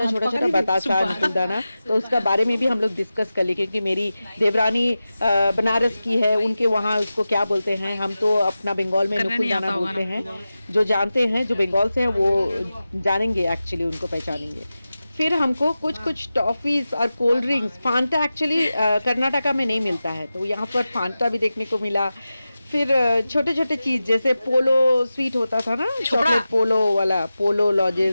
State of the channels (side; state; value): both; inverted; correlation -0.94